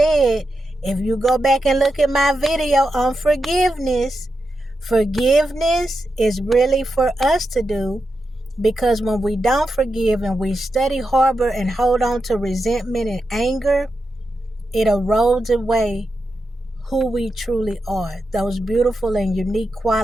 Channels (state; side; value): normal; both; correlation 0.88